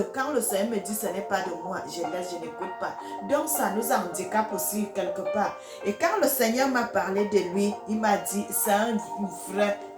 quand le Seigneur me dit ce n'est pas de moi, je laisse, je n'écoute pas. Donc ça nous handicape aussi quelque part. Et quand le Seigneur m'a parlé de lui, il m'a dit, c'est un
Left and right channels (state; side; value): identical; both; correlation 1.00